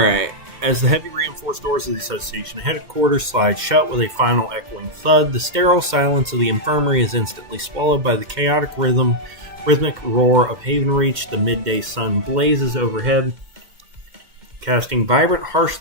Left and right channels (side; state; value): left; late; 2.1 ms